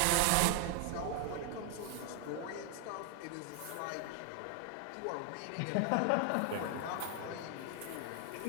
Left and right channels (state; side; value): different; both; correlation 0.00